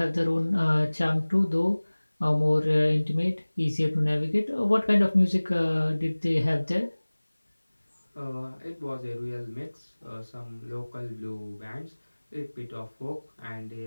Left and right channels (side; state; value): both; inverted; correlation -1.00